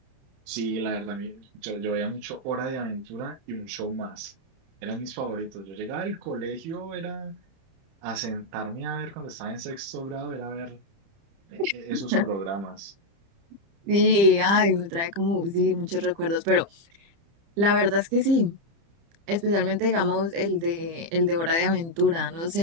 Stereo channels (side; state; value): left; late; 30 ms